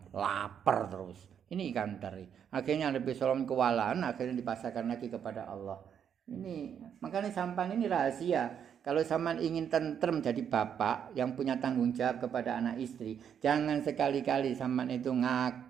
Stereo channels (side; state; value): left; quieter; 8.3 dB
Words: lapar terus. Ini ikan teri. Akhirnya Nabi Sulaiman kewalahan, akhirnya dipasarkan lagi kepada Allah. Ini makanya sampan ini rahasia. Kalau sampan ingin tentrem jadi bapak yang punya tanggung jawab kepada anak istri, jangan sekali-kali sampan itu